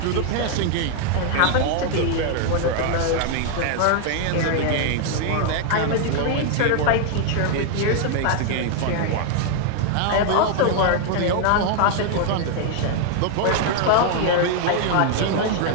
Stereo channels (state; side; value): different; both; correlation 0.00